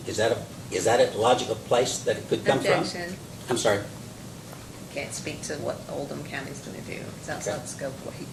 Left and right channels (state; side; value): identical; both; correlation 1.00